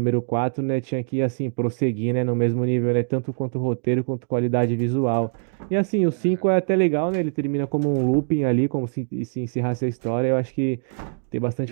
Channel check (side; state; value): left; silent; digital silence